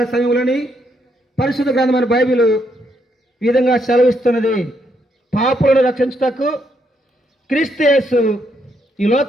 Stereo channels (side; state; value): both; normal; correlation 0.75